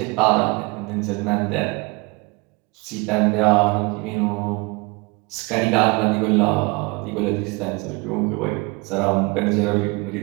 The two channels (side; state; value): left; quieter; 27.0 dB